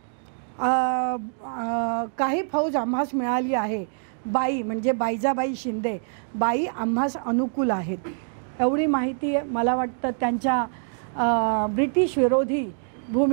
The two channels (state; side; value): silent; left; 62 dB below the other